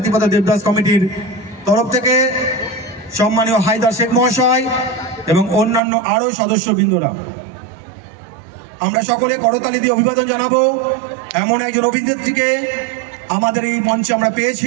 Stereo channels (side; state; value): left; drops out; at 5.8 s